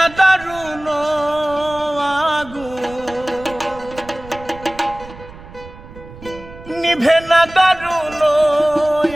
দারুণ আগুন, নিভে না দারুণ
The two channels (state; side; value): noise; right; rumble, 17 dB below the sound